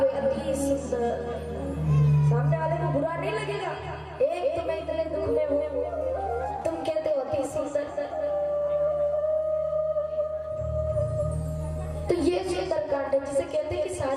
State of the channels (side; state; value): both; identical; correlation 1.00